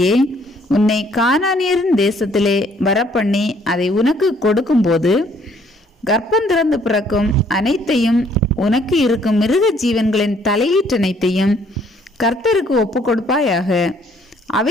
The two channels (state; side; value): normal; both; correlation 0.63